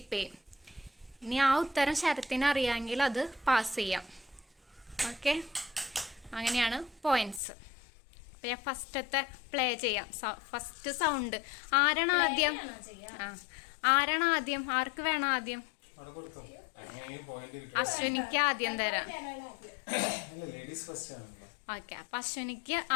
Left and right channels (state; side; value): drops out; right; at 7.4 s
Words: ചെയ്യും. ഇനി ആ ഉത്തരം ശരത്തിന് അറിയാമെങ്കിൽ അത് പാസ് ചെയ്യാം. ഓക്കെ, അങ്ങനെയാണ് പോയിന്റ്സ്. അപ്പം ഞാൻ ഫസ്റ്റത്തെ പ്ലേ ചെയ്യാം. ഫസ്റ്റ് സൗണ്ട് ആരാണ് ആദ്യം? ആർക്ക് വേണം ആദ്യം? അശ്വിനിക്ക് ആദ്യം തരാം. ഓക്കെ, അപ്പൊ അശ്വിനിക്ക്